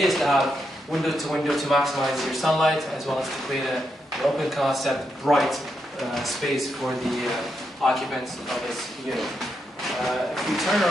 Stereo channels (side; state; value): both; normal; correlation 0.83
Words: is to have window to maximize your sunlight, as well as to create an open concept, bright space for the occupants of this unit. If you turn